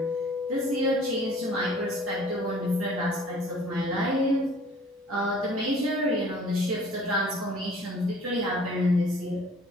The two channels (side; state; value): both; normal; correlation 0.52